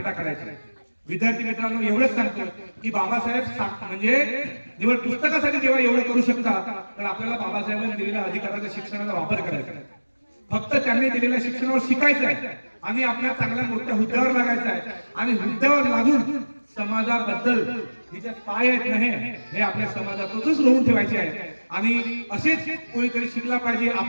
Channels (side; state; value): both; inverted; correlation -1.00